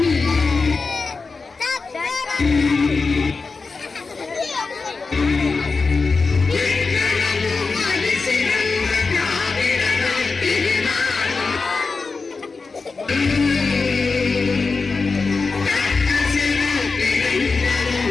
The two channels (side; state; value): right; quieter; 4.3 dB